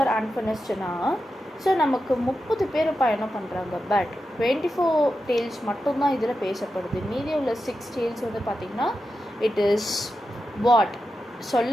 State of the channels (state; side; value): normal; both; correlation 0.90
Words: அன்ஃபினிஷ்டுனா ஸோ நமக்கு 30 பேர் பயணம் பண்ணுறாங்க. பட் 24 டேல்ஸ் மட்டும்தான் இதில் பேசப்படுது. மீதி உள்ள 6 டேல்ஸ் வந்து பார்த்திங்கன்னா இட் இஸ்